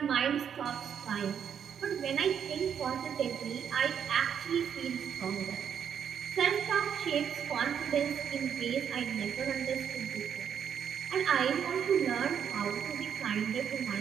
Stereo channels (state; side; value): quieter; left; 8.1 dB